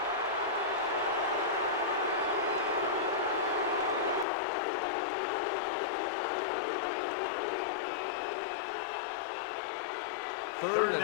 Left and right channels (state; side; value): drops out; right; at 4.2 s